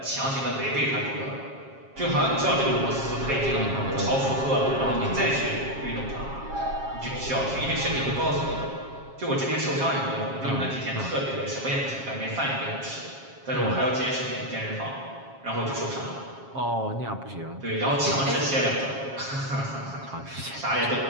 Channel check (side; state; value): left; late; 7.4 ms